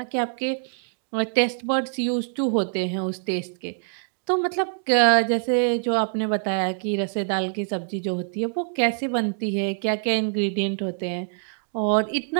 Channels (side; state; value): left; silent; digital silence